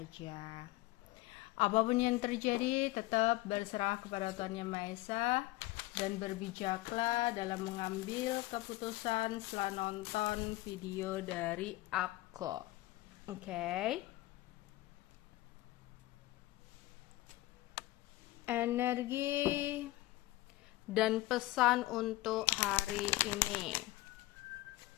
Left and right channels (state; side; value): quieter; right; 18.2 dB